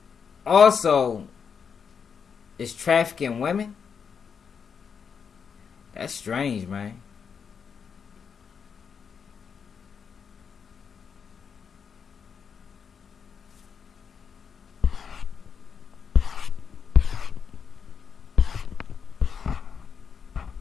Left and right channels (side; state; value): right; quieter; 6.5 dB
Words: also is trafficking women? That's strange, man.